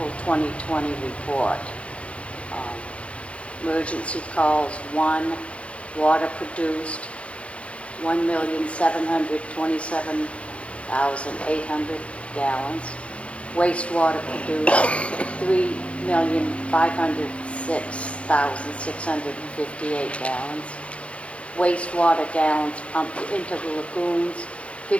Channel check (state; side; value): late; right; 0.062 ms